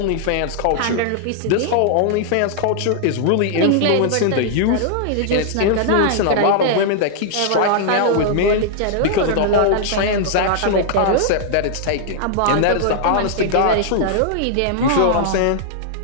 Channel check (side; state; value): both; different; correlation -0.01